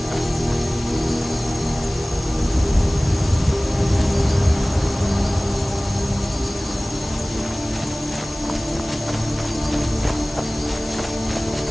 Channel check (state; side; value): noise; left; hiss, 16 dB below the sound